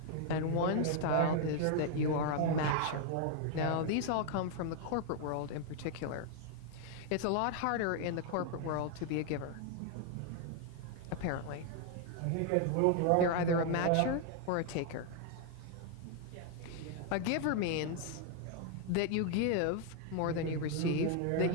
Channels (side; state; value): both; different; correlation 0.00